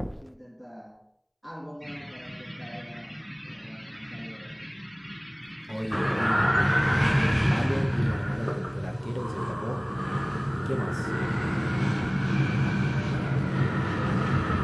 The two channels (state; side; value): identical; both; correlation 1.00